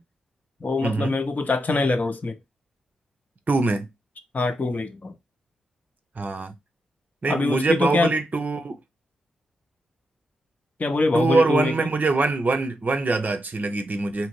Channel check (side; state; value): both; normal; correlation 0.84